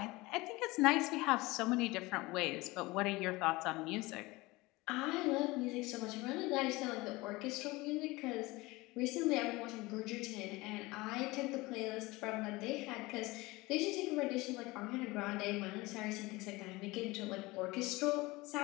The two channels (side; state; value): right; quieter; 21.7 dB